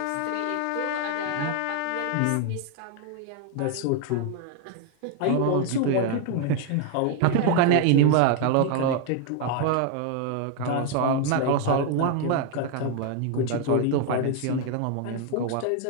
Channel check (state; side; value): different; both; correlation 0.01